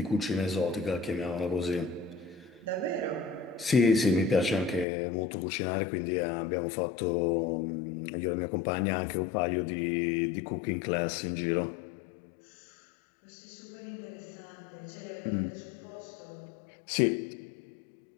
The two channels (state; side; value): drops out; right; at 4.9 s